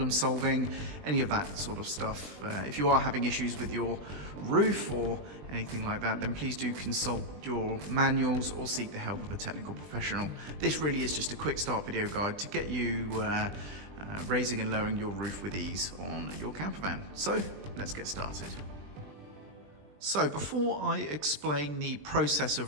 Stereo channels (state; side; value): late; left; 20 ms